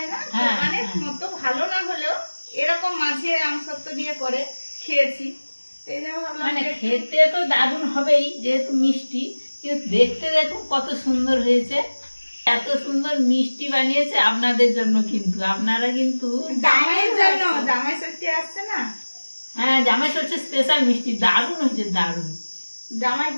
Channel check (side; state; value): both; inverted; correlation -1.00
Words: না, হ্যাঁ, দোকানের হ্যাঁ। মতো ভালো না হলেও এরকম মাঝে আম সত্ত্ব দিয়ে করে খেয়েছি। এই জন্য ভাবলাম মানে যে একটু- খেতে তো দারুণ হবেই যেহেতু মিষ্টি, কিন্তু দেখতে দেখুন কত সুন্দর হয়েছে। এত সুন্দর মিষ্টি বানিয়েছে আপনাদের জন্য, কিন্তু আপনারা কিন্তু জামাইয়ের জন্য, জামাই ষষ্ঠী আসছে না, হ্যাঁ জামাই হচ্ছে স্পেশাল মিষ্টি, দারুণ হয়েছে দারুণ।